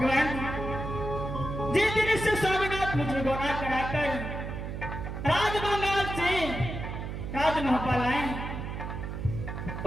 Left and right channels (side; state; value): right; noise; hum, 6 dB below the sound